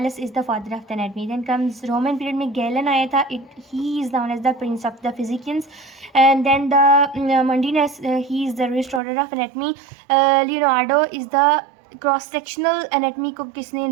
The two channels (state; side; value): drops out; left; at 9.0 s